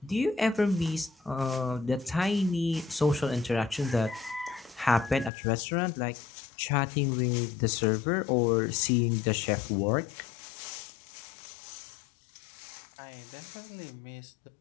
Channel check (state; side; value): drops out; right; at 5.3 s